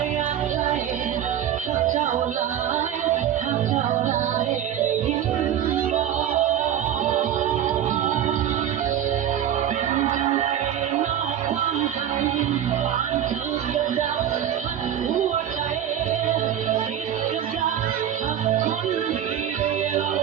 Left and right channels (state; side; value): quieter; left; 10.2 dB